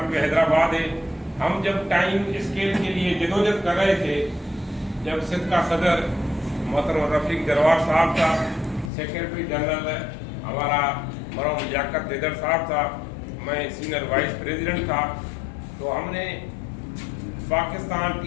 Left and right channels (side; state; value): right; drops out; at 8.9 s